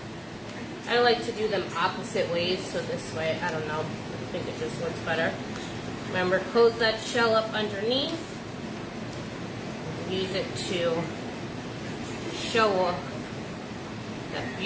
I like to do them opposite ways, so this way, I don't know, I think it just looks better. Remember, close that shell up underneath. Use it to show off that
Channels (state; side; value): identical; both; correlation 1.00